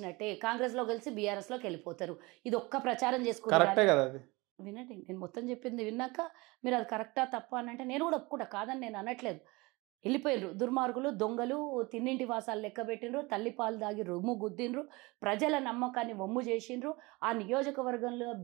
కాంగ్రెస్లో కలిసి బీఆర్ఎస్లోకి వెళ్ళిపోతారు. ఇది ఒక్క ప్రచారం కరెక్టే కదా అది. వినండి, నేను మొత్తం చెప్పింది విన్నాక మీరు అది కరెక్టా తప్ప అని అంటే నేను కూడా ఒప్పుకుంటా, కాదని నేను అనట్లేదు. వెళ్ళిపోయినరు దుర్మార్గులు, దొంగలు, తిన్నింటి వాసాలు లెక్క పెట్టినరు, తల్లిపాలు దాగి రొమ్ము గుద్దినరు, ప్రజల నమ్మకాన్ని వమ్ము చేసిండ్రు. ఆ నియోజకవర్గంలో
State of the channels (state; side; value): quieter; left; 23.9 dB